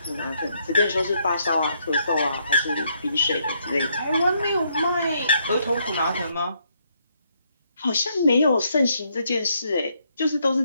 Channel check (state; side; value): inverted; both; correlation -0.74